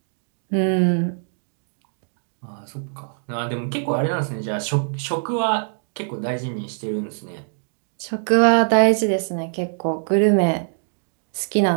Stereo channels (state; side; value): silent; left; 62 dB below the other